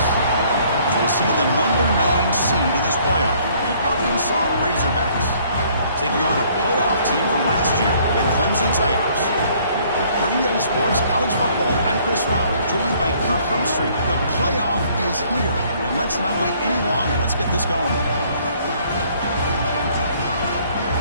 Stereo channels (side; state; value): both; inverted; correlation -0.61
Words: We'll see the number 9 seed in this playoff, the Arkansas Razorbacks, taking on a playoff team from last year, the Clemson Tigers. For EA Sports College Football, I'm Chris Fowler, joined by Kirk Herbstreit. The playoff is here, and let's not wait any longer. Let's get this going.